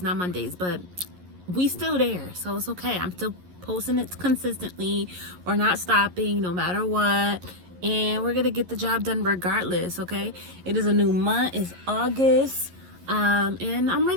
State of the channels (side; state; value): left; late; 11 ms